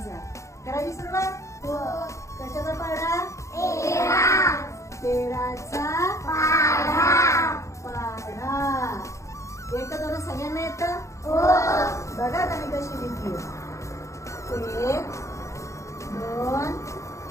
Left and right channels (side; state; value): right; late; 0.15 ms